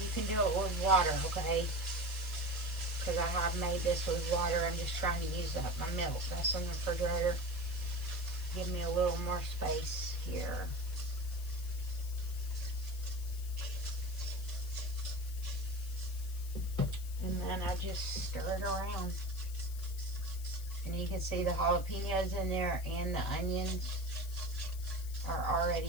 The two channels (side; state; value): left; noise; hiss, 16 dB below the sound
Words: can do it with water, okay? Because I have made this with water. I'm just trying to use up my milk. That's in the refrigerator. Give me a little more space here. And then I just stir it around. And you can see the jalapenos in there and the onions are